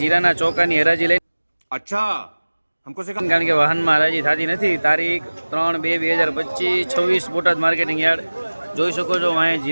ચોકાની હરાજી લઈને. અચ્છા હમકો સે કારણ કે વાહનમાં હરાજી થતી નથી. તારીખ 3/2/2025 26 બોટાદ માર્કેટિંગ યાર્ડ. જોઈ શકો છો અહીંયા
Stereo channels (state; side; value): inverted; both; correlation -1.00